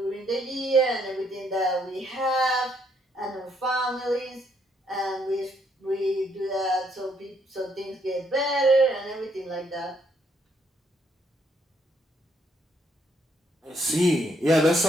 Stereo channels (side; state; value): both; normal; correlation 0.71